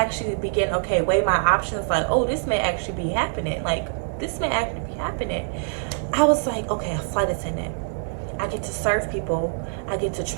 weigh my options, like, oh, this may actually be happening. I was like, okay, a flight attendant. I get to serve people. I get to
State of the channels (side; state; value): left; silent; digital silence